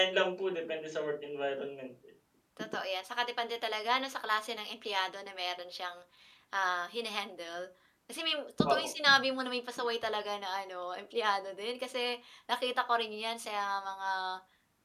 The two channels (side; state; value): both; identical; correlation 1.00